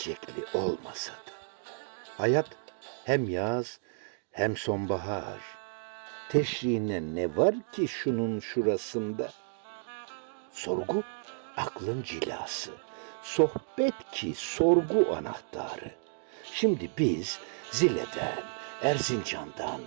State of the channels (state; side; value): silent; left; digital silence